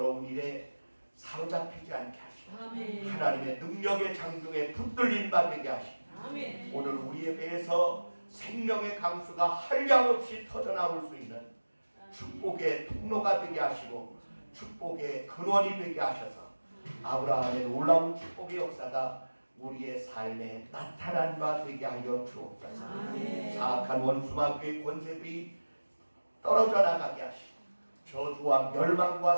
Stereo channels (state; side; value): inverted; both; correlation -1.00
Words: 일에 사로잡히지 않게 하시고 하나님의 능력의 장중에 붙들린 바 되게 하시고 오늘 우리의 배에서 생명의 강수가 한량없이 터져나올 수 있는 축복의 통로가 되게 하시고 축복의 근원이 되게 하셔서 아브라함의 놀라운 축복의 역사가 우리의 삶에 나타난 바 되게 하여 주옵소서. 사악한 원수마귀의 권세들이 떨어져 나가게 하시고 저주와 멸망과